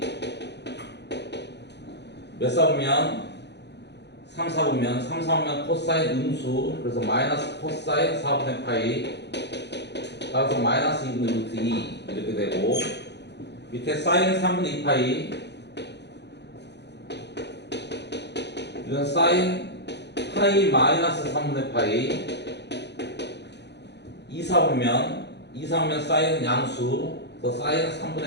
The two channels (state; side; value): late; right; 0.50 ms